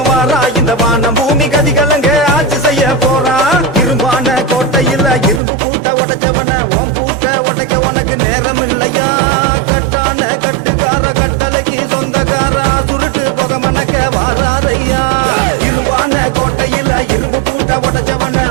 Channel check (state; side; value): drops out; left; at 5.4 s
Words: வாரா இந்த வான பூமி கதிகலங்க ஆட்சி செய்ய போறா இரும்பான கோட்டையில் இரும்பு பூட்ட உடைச்சவன ஓம் பூட்ட உடைக்க உனக்கு நேரம் இல்லையா கட்டான கட்டுக்கார கட்டளைக்கு சொந்தக்காரா சுருட்டு புக மணக்க வாராரையா இரும்பான கோட்டையில் இரும்பு பூட்ட உடைச்சவன